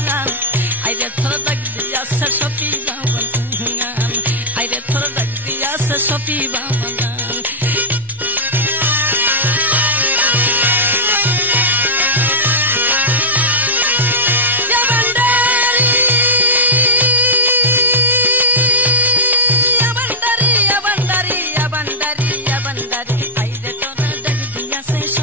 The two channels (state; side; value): normal; both; correlation -0.08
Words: আইরে তোরা ডাক দিয়াছে সফি বাবা জান, আইরে তোরা ডাক দিয়াছে সফি বাবা জান।